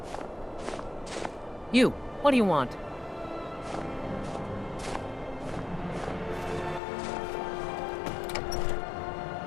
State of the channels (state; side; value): drops out; right; at 6.8 s